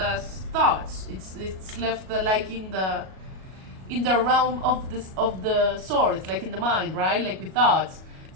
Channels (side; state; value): left; late; 37 ms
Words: It's left in the realm of the swords, like in the mind, right? Like with thoughts.